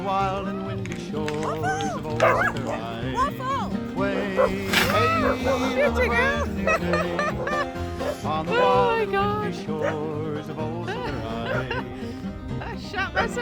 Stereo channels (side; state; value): both; identical; correlation 1.00